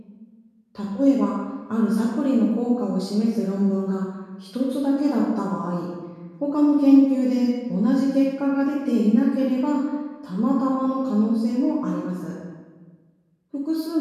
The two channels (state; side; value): identical; both; correlation 1.00